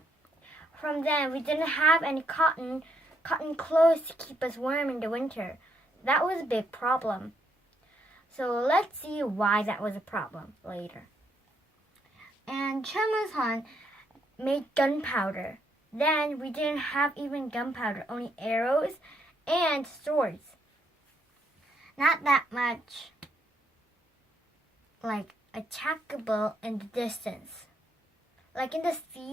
From then, we didn't have any cotton clothes to keep us warm in the winter. That was a big problem. So let's see why that was a problem later. And Choimusun made gunpowder. Then we didn't have even gunpowder, only arrows and swords. Not that much like attackable in the distance. Like in the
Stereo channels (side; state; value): both; normal; correlation 0.74